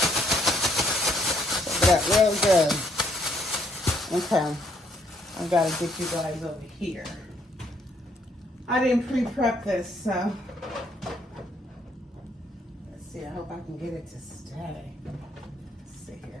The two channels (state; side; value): normal; both; correlation 0.69